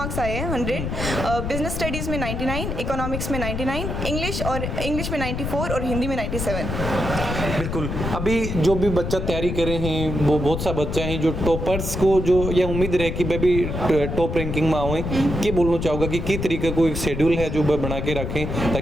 आए हैं 100, बिजनेस स्टडीज़ में 99, इकोनॉमिक्स में 99, इंग्लिश में 94 और हिंदी में 97। बिल्कुल। अभी जो भी बच्चा तैयारी करे हैं, वो बहुत सा बच्चा हैं जो टॉपर्स को जो यह उम्मीद रहे कि भाई भी टॉप रैंकिंग में आए, में कि बोलना चाहोगा कि तरीके को एक शेड्यूल है जो बना के रखें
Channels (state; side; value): noise; left; rumble, 3 dB below the sound